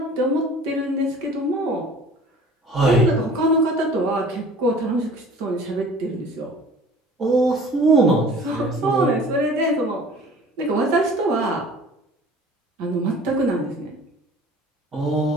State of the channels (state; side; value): normal; both; correlation 0.47